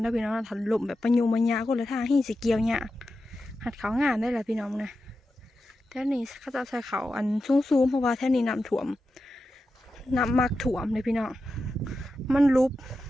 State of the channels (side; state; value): both; normal; correlation 0.90